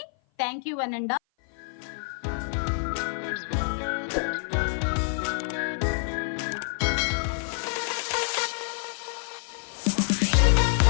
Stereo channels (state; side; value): silent; right; 55 dB below the other